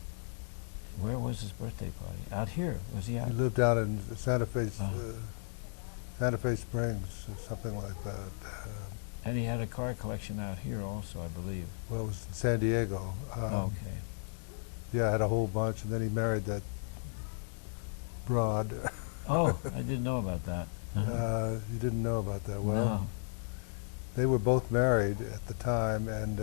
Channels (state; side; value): silent; right; digital silence